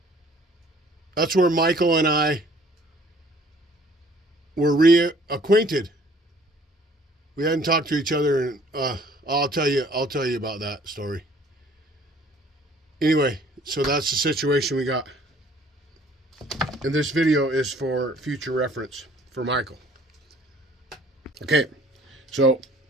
Michael and I were reacquainted. We hadn't talked to each other, and I'll tell you about that story. Anyway, so that's the situation we got. And this video is for future reference for Michael. Okay, so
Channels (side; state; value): both; normal; correlation 0.56